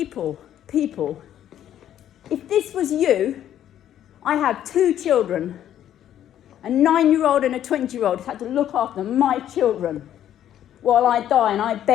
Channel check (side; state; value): right; quieter; 11.0 dB